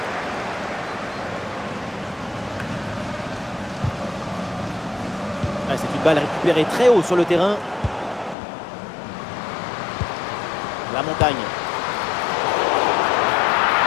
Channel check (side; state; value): right; drops out; at 8.3 s